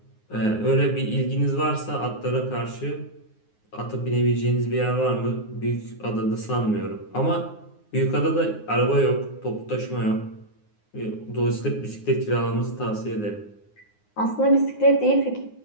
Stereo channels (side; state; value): right; late; 9.6 ms